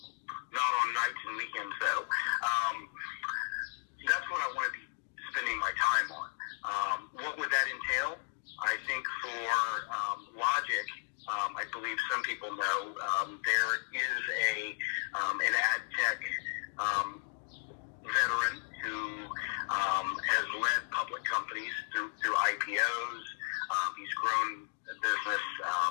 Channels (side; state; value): right; silent; 55 dB below the other